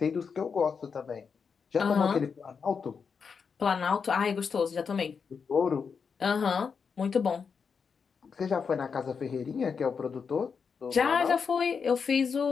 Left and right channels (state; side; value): quieter; right; 5.9 dB